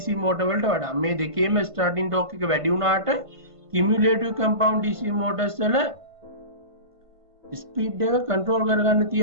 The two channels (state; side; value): late; left; 1.5 ms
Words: motor වලට වඩා. මේ දෙකේම starting torque එක වැඩි වුණාට cumulative compound DC motors වල ස්පීඩ් එක කන්ට්‍රෝල් කරගන්න